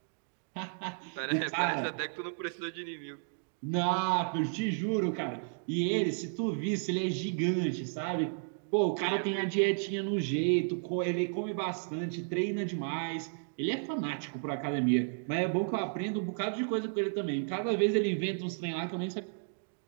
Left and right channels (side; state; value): left; silent; digital silence